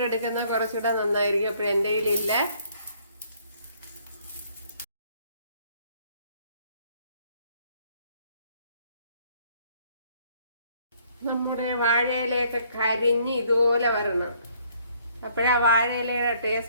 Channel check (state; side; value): inverted; both; correlation -0.63